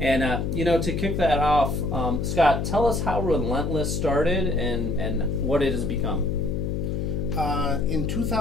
to kick that off, Scott, tell us how Relentless started and what it has become. In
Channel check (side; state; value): left; noise; hum, 1 dB below the sound